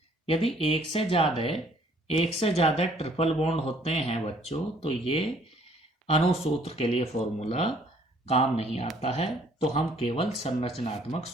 यदि एक से ज्यादा ट्रिपल बॉन्ड होते हैं बच्चों तो ये अणुसूत्र के लिए फॉर्मूला काम नहीं आता है, तो हम केवल संरचनात्मक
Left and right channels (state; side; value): normal; both; correlation 0.60